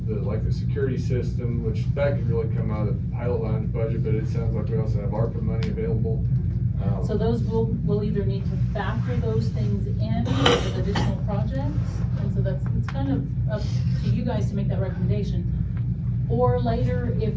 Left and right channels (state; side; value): identical; both; correlation 1.00